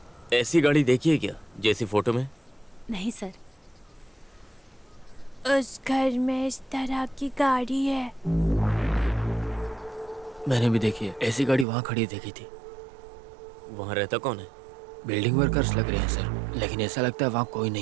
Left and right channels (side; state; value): left; drops out; at 11.7 s